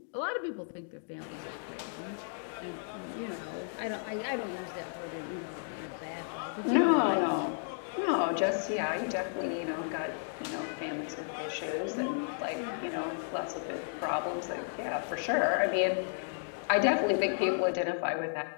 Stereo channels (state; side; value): silent; right; digital silence